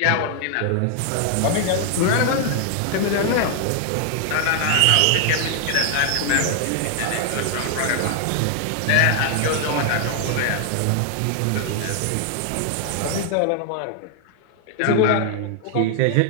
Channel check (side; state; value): both; different; correlation 0.00